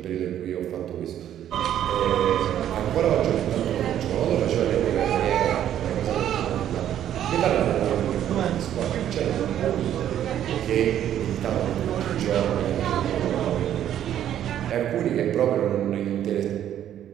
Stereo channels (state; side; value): quieter; left; 10.9 dB